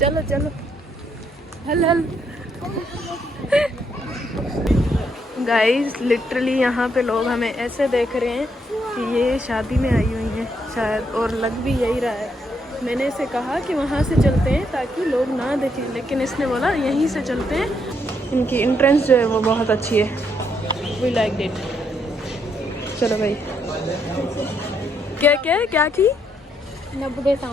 चलो हल हल। गाइस लिटरली यहाँ पे लोग हमें ऐसे देख रहे हैं कि ये शादी में आई हुई हैं शायद, और लग भी यही रहा है। मैंने इसे कहा कि वहाँ से चलते हैं ताकि लोग ना देखें, लेकिन इसने बोला यहीं से चलते हैं। इनकी एंट्रेंस जो है वो बहुत अच्छी है, वी लाइक इट। चलो भाई, क्या क्या क्या की 90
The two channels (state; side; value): normal; both; correlation 0.75